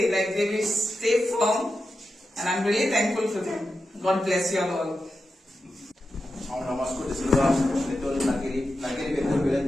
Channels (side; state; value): both; normal; correlation 0.90